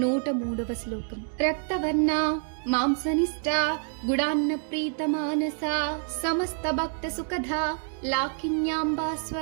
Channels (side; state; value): left; silent; 60 dB below the other